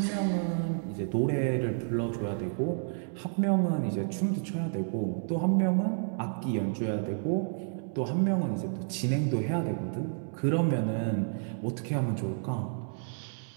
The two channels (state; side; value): silent; left; 57 dB below the other